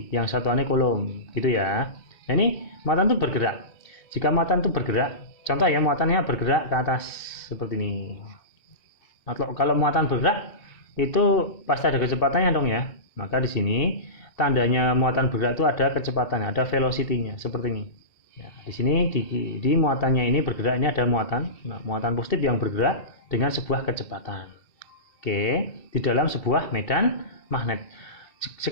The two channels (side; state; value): right; late; 2.3 ms